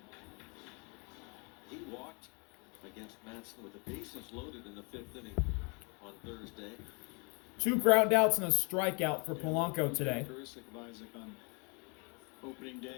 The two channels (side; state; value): right; quieter; 33.0 dB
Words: He walked against Matson with the bases loaded in the 5th inning on Thursday. 2 ground outs and a strikeout for Polanco today. Characteristic of Isaac on opening